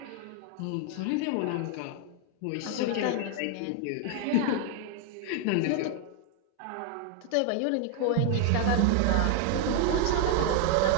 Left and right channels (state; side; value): different; both; correlation 0.00